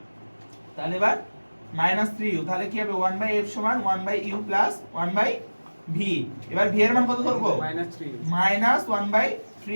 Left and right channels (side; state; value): both; inverted; correlation -1.00